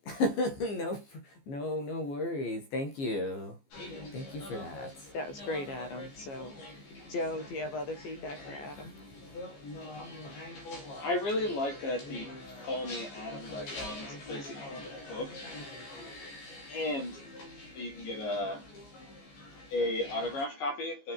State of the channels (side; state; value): right; late; 15 ms